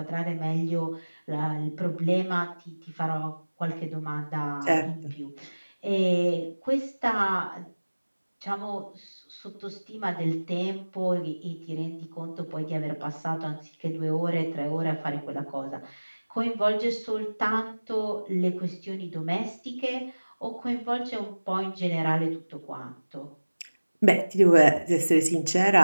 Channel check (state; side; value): inverted; both; correlation -1.00